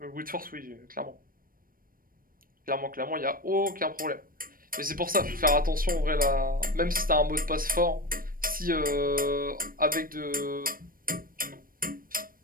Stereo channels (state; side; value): late; left; 0.41 ms